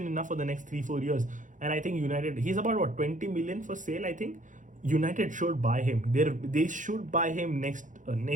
enough for the next 3-4 years. And I think United, he's about 20 million for sale. I think United should buy him. They should buy him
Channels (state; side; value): late; left; 0.37 ms